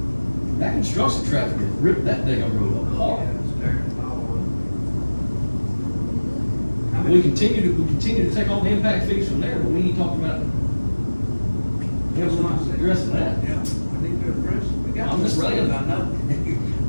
That construction traffic has ripped that damn road up hard. We continue to take all the impact fees from there, but we ain't talking about Yeah, we're not addressing that. Yeah, we need to address it. We got I'm just to, I saying. know.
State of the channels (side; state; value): both; inverted; correlation -1.00